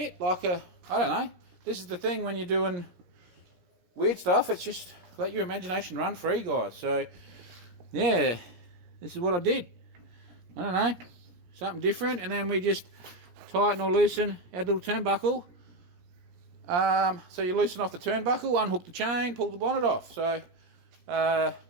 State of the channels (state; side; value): late; left; 17 ms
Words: like a, I don't know. This is the thing when you're doing weird stuff, it's just let your imagination run free, guys. So yeah, this is what I did. I don't know, something different, and then we just tighten or loosen our little turnbuckle. So you loosen off the turnbuckle, unhook the chain, pull the bonnet off. So it's